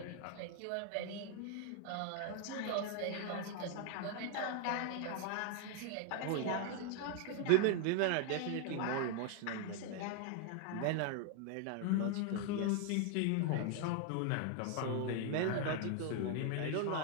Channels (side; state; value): both; different; correlation 0.00